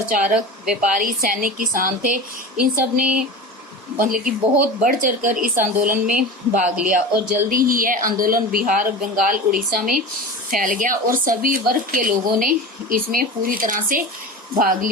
व्यापारी, सैनिक, किसान थे। इन सब ने मतलब कि बहुत बढ़ चढ़कर इस आंदोलन में भाग लिया और जल्दी ही यह आंदोलन बिहार, बंगाल, उड़ीसा में फैल गया और सभी वर्ग के लोगों ने इसमें पूरी तरह से भाग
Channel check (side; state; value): both; normal; correlation 0.30